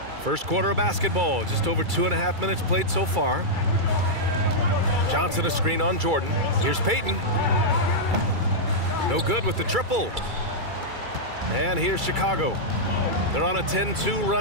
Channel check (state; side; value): late; left; 2.3 ms